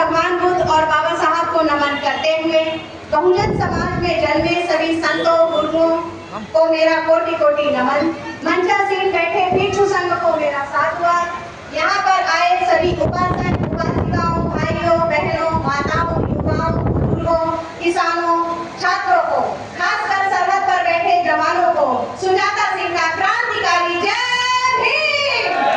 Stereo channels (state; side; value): identical; both; correlation 1.00